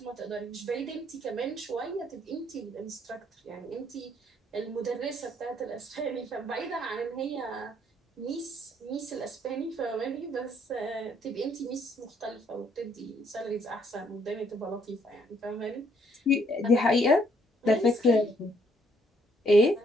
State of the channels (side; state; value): both; normal; correlation 0.68